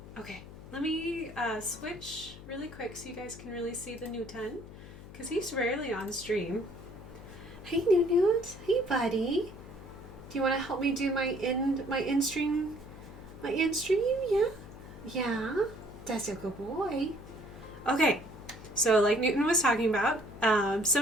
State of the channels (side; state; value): left; noise; hum, 15 dB below the sound